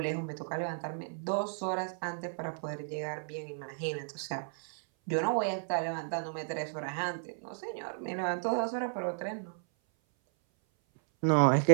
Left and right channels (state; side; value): silent; left; 55 dB below the other